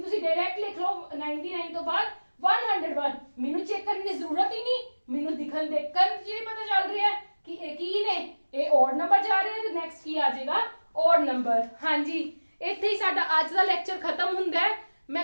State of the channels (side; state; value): both; inverted; correlation -1.00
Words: ਤੁਸੀਂ ਡਾਇਰੈਕਟ ਲਿਖ ਲਓ 99 ਤੋਂ ਬਾਅਦ 101, ਮੈਨੂੰ ਚੈੱਕ ਕਰਨ ਦੀ ਜ਼ਰੂਰਤ ਹੀ ਨਹੀਂ, ਮੈਨੂੰ ਦਿਖਣ ਦੇਖਣ ਜੀ ਪਤਾ ਚੱਲ ਰਿਹਾ ਹੈ ਕਿ ਇਹ ਕੀ ਨੇ, ਇਹ ਓਡ ਨੰਬਰ ਜਾ ਰਹੇ ਤੇ ਨੈਕਸਟ ਕੀ ਆ ਜਾਏਗਾ, ਓਡ ਨੰਬਰ। ਹਾਂਜੀ, ਇੱਥੇ ਹੀ ਸਾਡਾ ਅੱਜ ਦਾ ਲੈਕਚਰ ਖਤਮ ਹੁੰਦਾ ਹੈ। ਮੈਂ